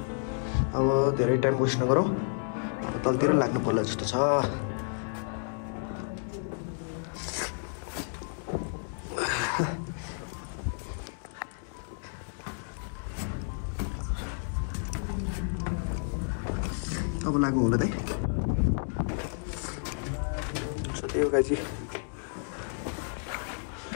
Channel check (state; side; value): silent; right; 57 dB below the other